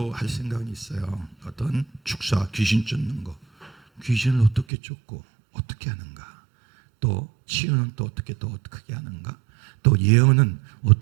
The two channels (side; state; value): left; drops out; at 4.7 s